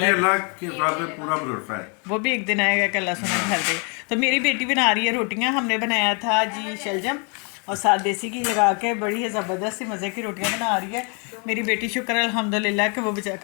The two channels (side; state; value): right; quieter; 35.8 dB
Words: अल्लाह के साथ में पूरा भरोसा है। वो भी एक दिन आएगा कि अल्लाह सुना भर दे। तो मेरी बेटी बना रही है रोटियां। हमने बनाया था जी शलजम और साथ देसी घी लगा के, बड़ी ज़बरदस्त सी मज़े की रोटियां बना रही है मेरी बेटी। शुक्र अल्हम्दुलिल्लाह कि वो